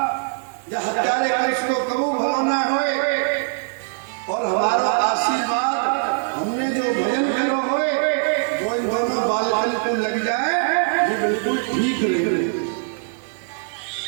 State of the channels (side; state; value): left; silent; 58 dB below the other